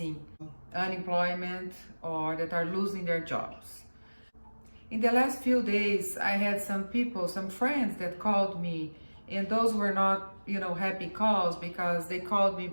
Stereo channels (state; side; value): inverted; both; correlation -1.00